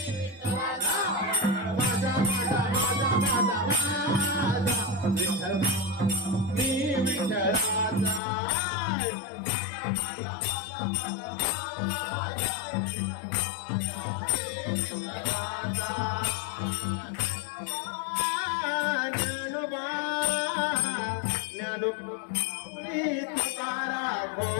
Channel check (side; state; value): right; drops out; at 8.2 s